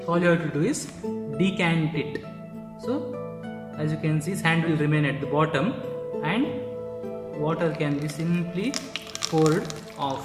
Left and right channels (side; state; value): both; identical; correlation 1.00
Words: All you have to do is decant it. So as you can see, sand will remain at the bottom and water can be simply poured